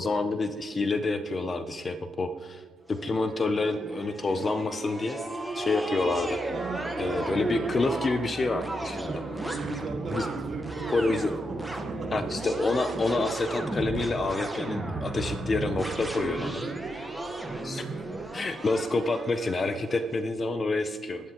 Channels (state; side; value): normal; both; correlation 0.85